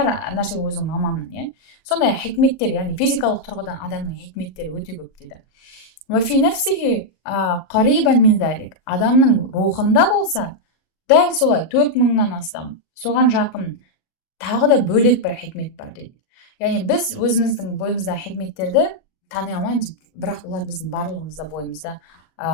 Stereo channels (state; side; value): late; right; 39 ms